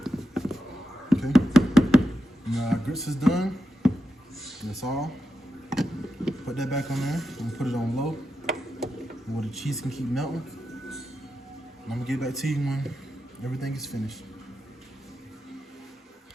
Okay. Now our grits is done. That's all. Put that back on there and put it on low where the cheese can keep melting. And I'm gonna get back to you when everything is finished.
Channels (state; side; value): normal; both; correlation 0.88